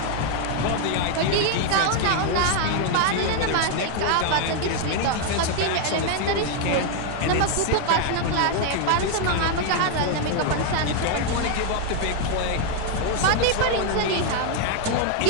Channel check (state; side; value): different; both; correlation 0.00